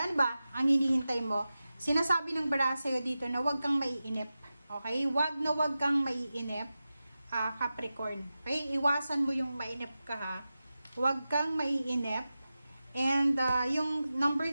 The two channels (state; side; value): inverted; both; correlation -0.94